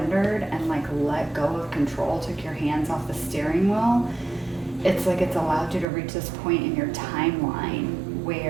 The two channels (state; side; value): drops out; left; at 5.9 s